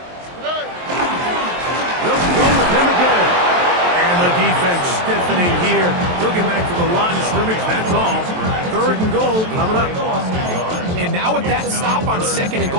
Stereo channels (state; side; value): late; left; 23 ms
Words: They'll go with him again. And the defense stiffening here. He'll get back to the line of scrimmage. That's all. 3rd and goal coming up. And now with that stop on 2nd and